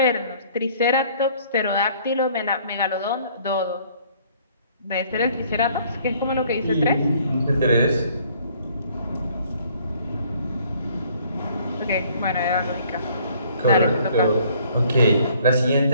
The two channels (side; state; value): both; inverted; correlation -0.59